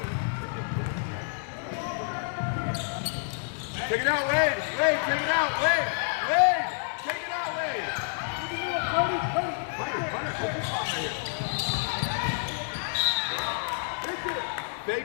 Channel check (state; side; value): silent; right; digital silence